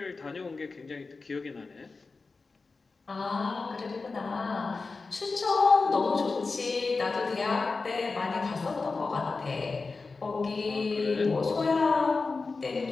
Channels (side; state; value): right; quieter; 4.1 dB